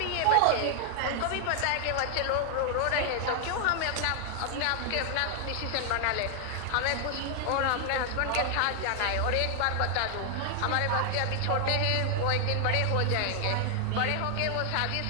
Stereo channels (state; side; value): different; both; correlation 0.00